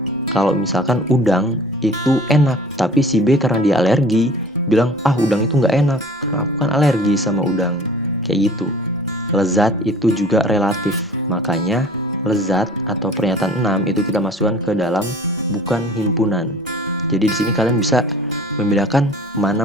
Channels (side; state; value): both; normal; correlation 0.46